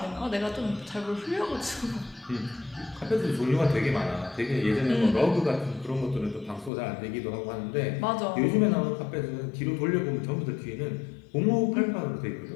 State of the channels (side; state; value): right; drops out; at 6.7 s